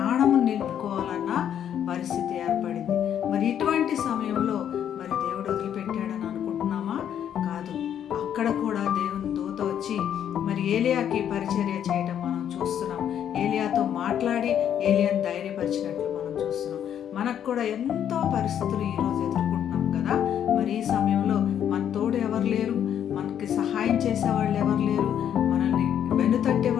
నిలుపుకోవాలన్న పరిస్థితి ఏర్పడింది. మరి ఇటువంటి సమయంలో మరి దేవుడు వదిలిపెట్టాడని అనుకుంటున్నామా? కాదు. అక్కడ కూడా దేవుని దూత వచ్చి మరి ఏలియాకి పరిచర్య చేయడం మనం చూస్తున్నాం. ఏలియాతో మాట్లాడి ఏలియాని ధైర్యపరిచినట్లు మనం చూస్తున్నాం. మనకు కూడా ఎంతో పరిస్థితులు ఈరోజు ఎదుర్కొంటున్నాం కదా. మరి ఈ సమయంలో మన తోడు ఎవరు లేరు, మనకి సహాయం చేసేవాళ్ళు ఎవరు లేరు, మనల్ని వెనుతట్టే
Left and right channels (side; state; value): right; quieter; 9.5 dB